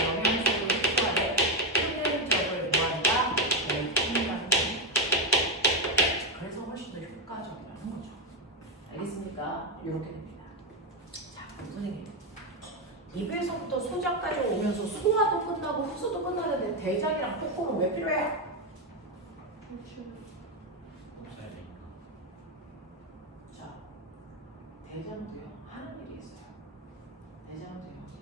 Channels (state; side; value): normal; both; correlation 0.07